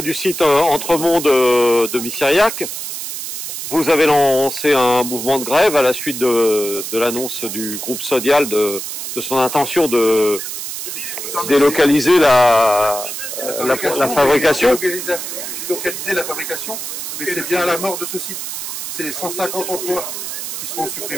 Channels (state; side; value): noise; right; hiss, 6 dB below the sound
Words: du site Entremont de Missiriac. Vous avez lancé un mouvement de grève à la suite de l'annonce du groupe Sodial de son intention de délocaliser la fabrication. Délocaliser la fabrication, mais c'est bien à la mort de ce site. C'est 150 emplois qui seront